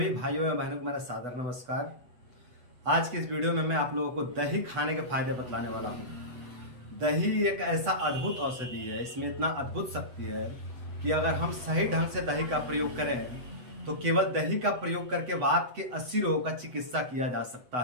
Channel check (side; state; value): left; late; 8.0 ms